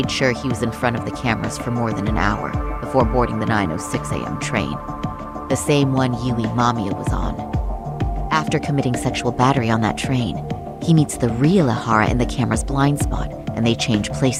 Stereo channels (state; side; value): identical; both; correlation 1.00